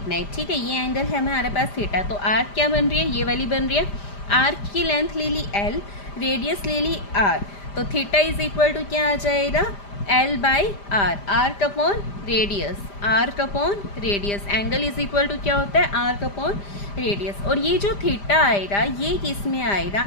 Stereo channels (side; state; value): right; late; 5.0 ms